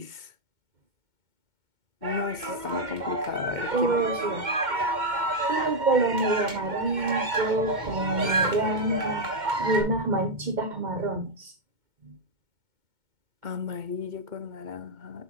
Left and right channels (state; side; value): late; left; 2.2 ms